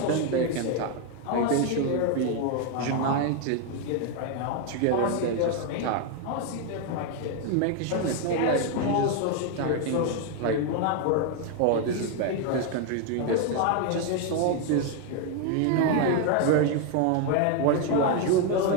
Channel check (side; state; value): both; different; correlation 0.01